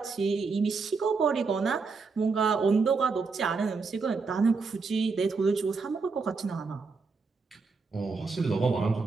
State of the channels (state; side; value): quieter; left; 4.5 dB